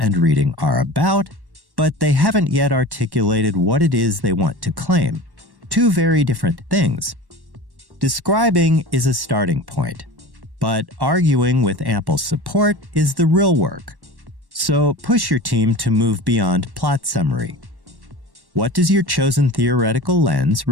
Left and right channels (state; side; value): late; left; 1.1 ms